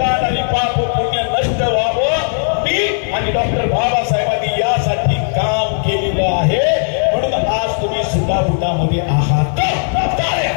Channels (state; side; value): silent; right; digital silence